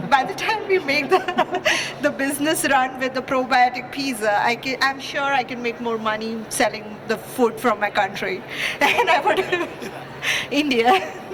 by the time we make the business run with the probiotic pizza, I'm sure I can make more money selling the food from my country than I would India.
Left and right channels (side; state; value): both; identical; correlation 1.00